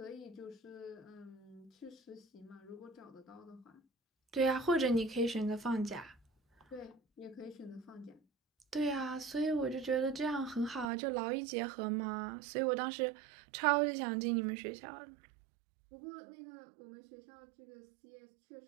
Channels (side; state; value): left; drops out; at 10.9 s